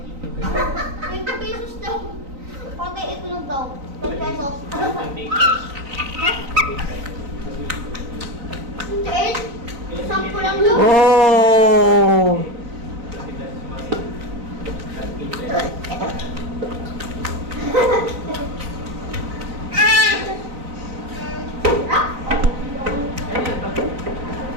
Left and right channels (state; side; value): late; left; 3.9 ms